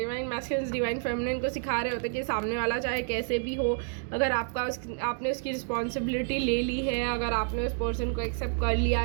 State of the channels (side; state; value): left; silent; 58 dB below the other